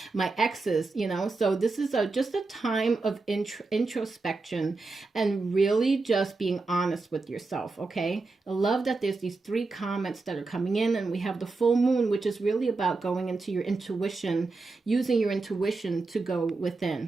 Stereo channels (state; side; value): quieter; left; 3.7 dB